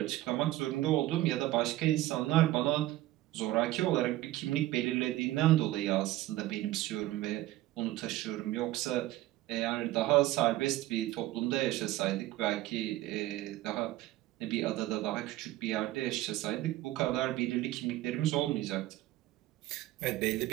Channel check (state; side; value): quieter; left; 16.1 dB